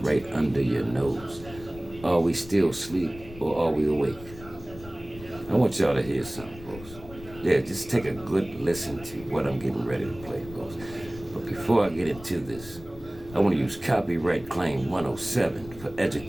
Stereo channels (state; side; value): noise; left; rumble, 17 dB below the sound